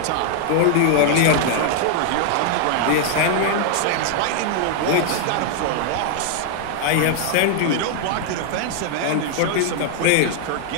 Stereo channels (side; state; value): both; different; correlation 0.00